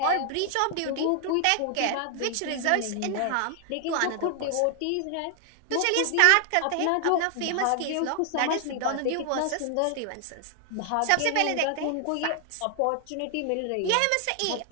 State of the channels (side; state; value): both; different; correlation 0.00